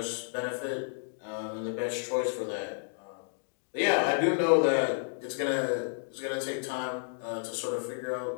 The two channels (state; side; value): silent; right; digital silence